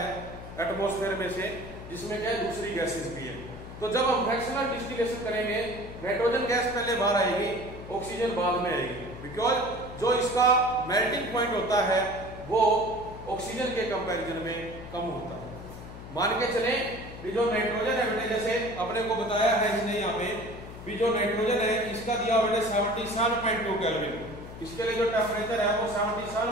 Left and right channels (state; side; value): noise; left; hum, 13 dB below the sound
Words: एटमॉस्फेयर में से, जिसमें क्या दूसरी गैसेस भी है। तो जब हम फ्रैक्शनल डिस्टिलेशन करेंगे, नाइट्रोजन गैस पहले बाहर आएगी, ऑक्सीजन बाद में आएगी, बिकॉज जो इसका मेल्टिंग पॉइंट होता है वो ऑक्सीजन के कंपैरिजन में कम होता है। मान के चले भी जो नाइट्रोजन है बेटे, जैसे अपने को बताया है इसने यहाँ पे भी, जो नाइट्रोजन है इसका दिया बेटे 77.2 केल्विन। इसके लिए जो टेम्परेचर है वो